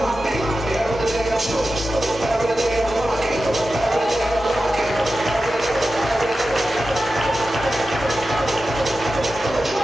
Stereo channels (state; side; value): normal; both; correlation 0.93